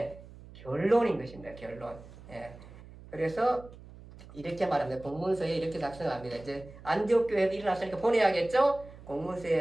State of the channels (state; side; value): noise; right; hum, 18 dB below the sound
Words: 결론인 것입니다. 결론. 예. 그래서 이렇게 말합니다. 공문서에 이렇게 작성합니다. 이제 안디옥 교회도 일어났으니까 보내야겠죠?